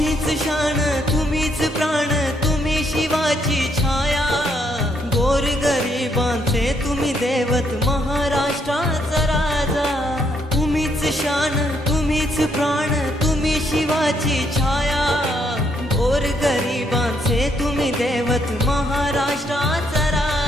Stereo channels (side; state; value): both; normal; correlation 0.73